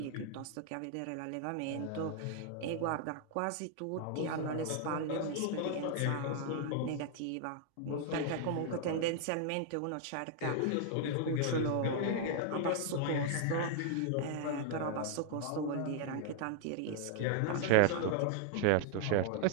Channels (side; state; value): both; different; correlation 0.00